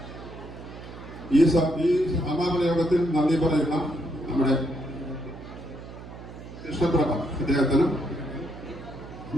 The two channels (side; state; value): right; noise; hum, 14 dB below the sound